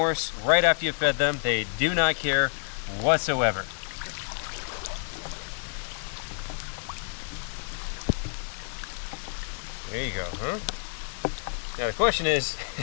right after you fed them. They do not care whatsoever. There you go, huh? Now the question is,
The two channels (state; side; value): silent; right; 59 dB below the other